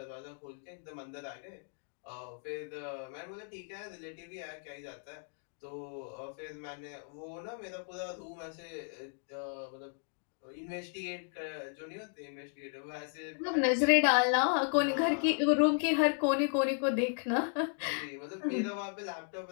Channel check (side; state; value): right; silent; 54 dB below the other